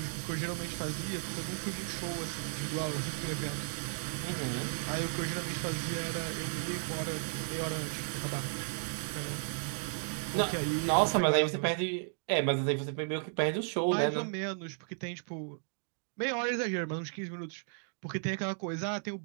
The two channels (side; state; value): left; silent; digital silence